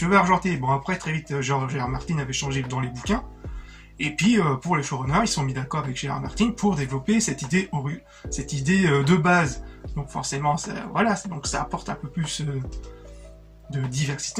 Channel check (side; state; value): both; identical; correlation 1.00